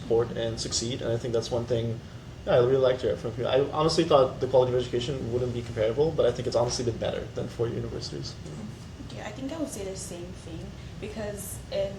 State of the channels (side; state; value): both; identical; correlation 1.00